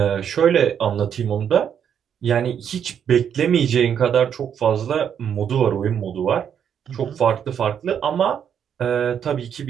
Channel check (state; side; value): quieter; left; 8.4 dB